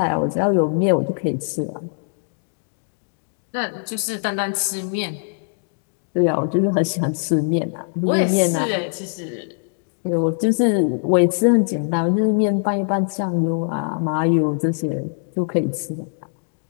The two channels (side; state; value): right; silent; 64 dB below the other